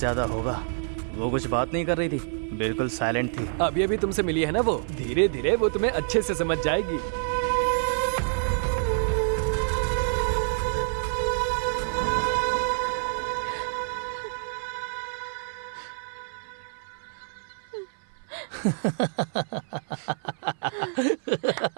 होगा। वो कुछ बात नहीं कर रही थी, बिल्कुल साइलेंट थी। अभी अभी तुमसे मिली है ना वो, धीरे धीरे वो तुम्हें अच्छे से समझ जाएगी।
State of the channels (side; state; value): left; silent; 57 dB below the other